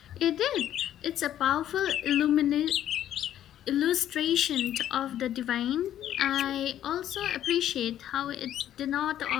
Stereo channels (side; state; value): right; quieter; 11.4 dB